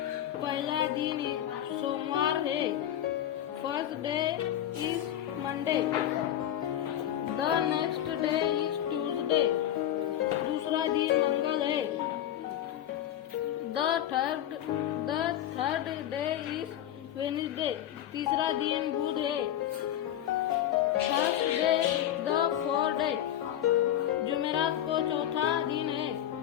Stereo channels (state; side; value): quieter; right; 11.4 dB